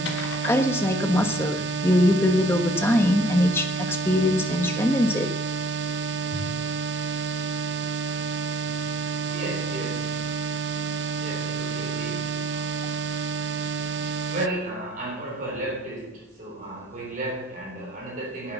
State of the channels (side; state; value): both; normal; correlation 0.57